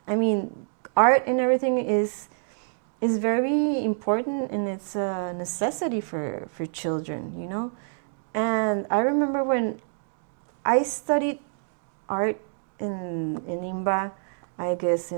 Art and everything is very important, and it's a necessity for children, And I remember when I studied art in INBA, I guess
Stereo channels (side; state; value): left; silent; digital silence